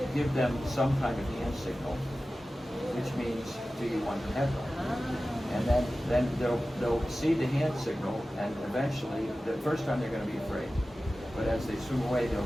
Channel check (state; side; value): normal; both; correlation 0.95